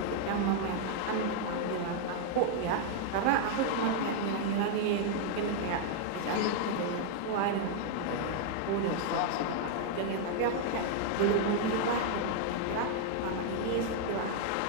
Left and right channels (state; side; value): different; both; correlation 0.00